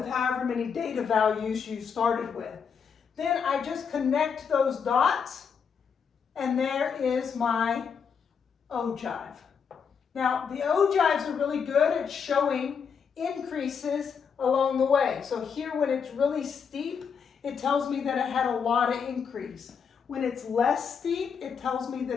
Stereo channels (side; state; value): right; quieter; 6.5 dB